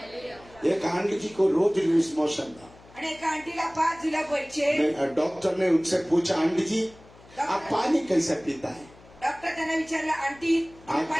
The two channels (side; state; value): left; noise; hum, 24 dB below the sound